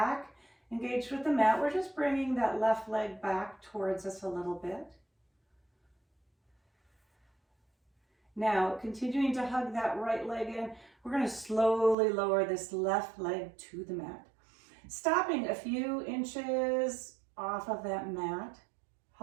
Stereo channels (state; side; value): drops out; left; at 12.0 s